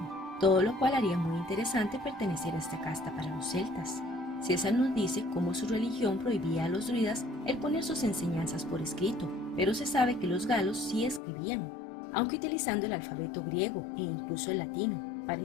todo lo cual haría muy interesante pertenecer a esta casta para los celtas. César nos dice cómo su religión prohibía a los druidas el poner sus enseñanzas por escrito, pero se sabe que los galos sí escribían, aunque utilizando el alfabeto griego e incluso el latino, para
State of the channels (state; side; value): drops out; right; at 11.2 s